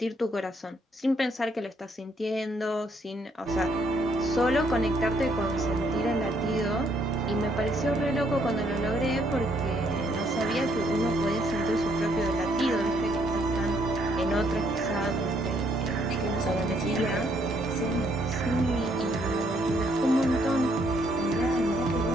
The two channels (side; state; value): both; normal; correlation 0.70